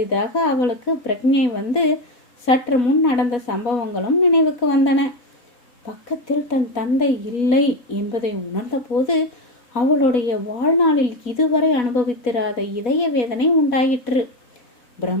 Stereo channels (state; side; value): late; right; 4.1 ms